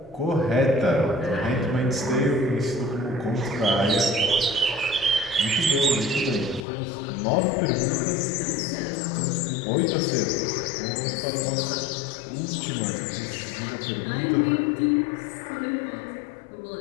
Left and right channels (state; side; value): drops out; right; at 6.7 s